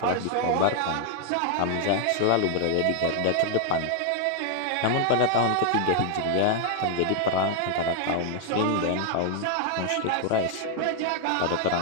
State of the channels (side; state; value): both; different; correlation 0.00